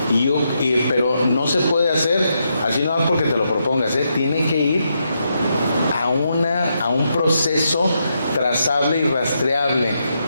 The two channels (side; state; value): both; inverted; correlation -0.82